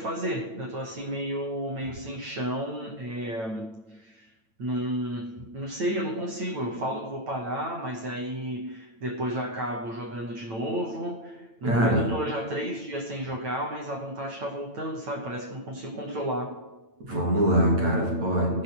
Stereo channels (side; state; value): left; late; 9.0 ms